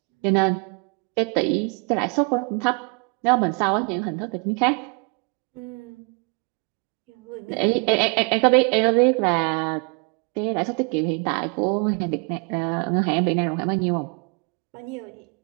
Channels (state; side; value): quieter; left; 34.7 dB